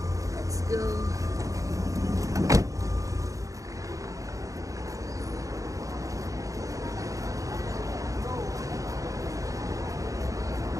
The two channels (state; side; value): late; left; 0.16 ms